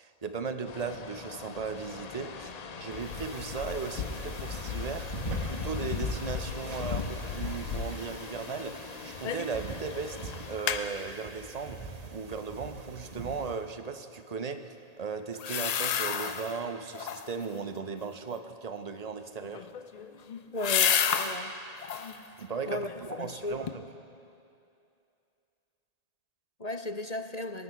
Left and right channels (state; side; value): late; right; 1.8 ms